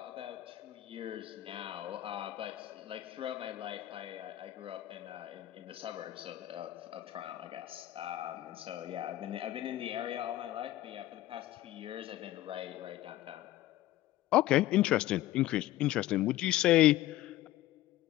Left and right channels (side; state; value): right; quieter; 15.0 dB